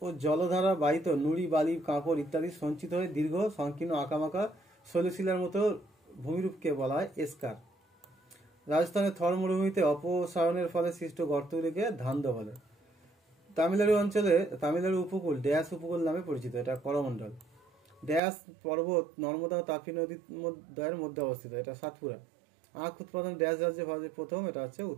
ও জলধারা বাহিত নুড়ি, বালি, কাঁকড় ইত্যাদি সঞ্চিত হয়ে দীর্ঘ সংকীর্ণ আঁকামাকা শৈলশিলার মতো ভূমিরূপকে বলা হয় এসকার। রাজস্থানের থর মরুভূমিতে অপসারণের ফলে সৃষ্ট গর্তগুলিকে ধান্দ বলে। তামিলনাড়ু উপকূল ড্যাশ উপকূল নামে পরিচিত, এটা করমণ্ডল। ড্যাশ পর্বত নর্মদা ও তাপি নদীর দ্বয়ের মধ্যে অবস্থিত, এটা সাতপুরা। আখ উৎপাদন ড্যাশ রাজ্যে ভারতের প্রথম, এটা হচ্ছে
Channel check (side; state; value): left; drops out; at 18.2 s